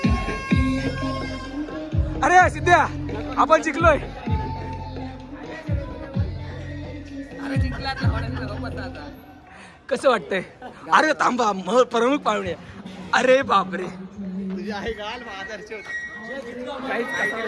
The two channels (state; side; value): identical; both; correlation 1.00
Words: अरे सिद्ध्या आपण जिंकलोय. कसं वाटतंय? अरे थांबा प्रमुख पाहुणे. अरे बापरे